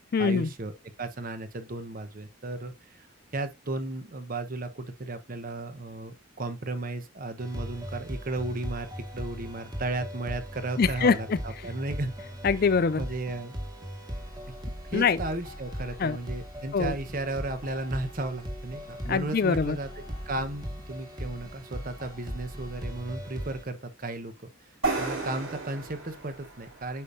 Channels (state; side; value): normal; both; correlation 0.35